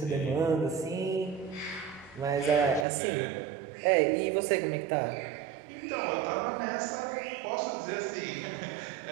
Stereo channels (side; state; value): left; drops out; at 2.9 s